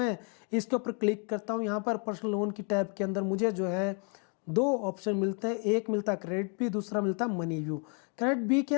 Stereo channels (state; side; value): quieter; right; 38.8 dB